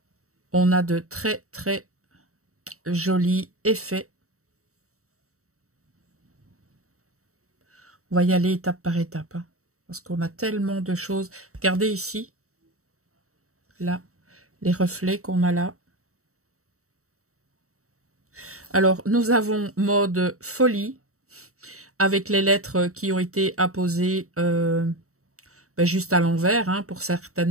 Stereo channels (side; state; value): left; late; 0.64 ms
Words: On a de très, très jolis effets. On va y aller étape par étape, hein, parce qu'on a tellement de choses. Regardez ici, là, les reflets qu'on a là. Alors, nous avons mode folie, avec les lettres qui ont été apposées juste à l'envers, hein, pour